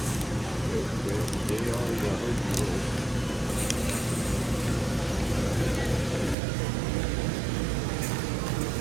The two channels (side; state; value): left; drops out; at 6.4 s